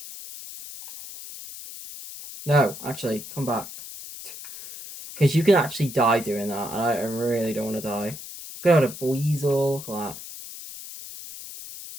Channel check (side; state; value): left; noise; hiss, 13 dB below the sound